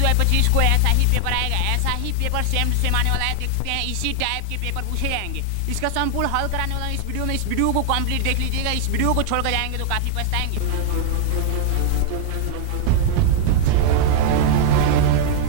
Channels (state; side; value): different; both; correlation 0.00